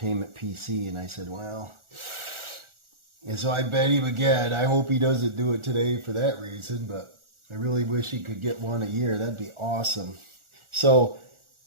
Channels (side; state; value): left; late; 1.4 ms